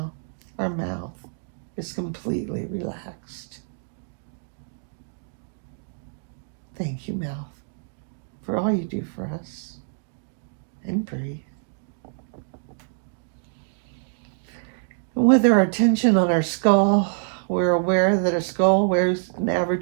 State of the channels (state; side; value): silent; left; digital silence